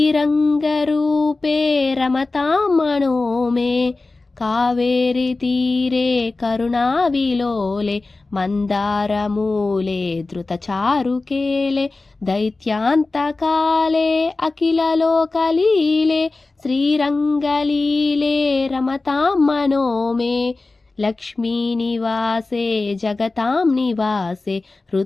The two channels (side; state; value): right; quieter; 3.4 dB